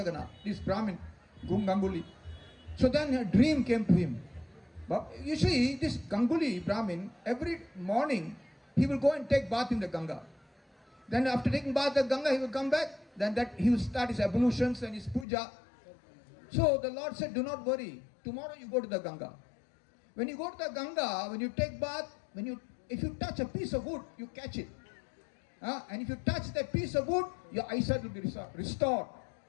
this Brahmin, Ganguly. So then a dream came to him. But you see, this Ganguly Brahmin, every morning, he will go and take bath in the Ganga. Then after taking bath in the Ganga, he will come back. Then he will start his ablutions and his puja. So the Lord said, do not worry. Tomorrow you go to the Ganga. When you go to the Ganga, when you take bath, if you touch a piece of wood, you catch it. And if you touch that piece of wood, your eyesight will be restored.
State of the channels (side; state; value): right; drops out; at 15.2 s